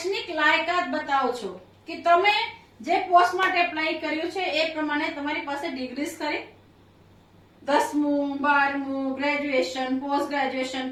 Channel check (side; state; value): both; identical; correlation 1.00